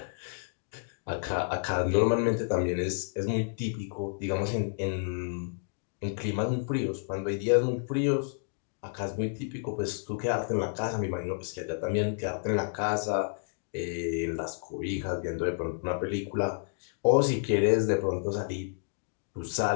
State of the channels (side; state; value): right; silent; digital silence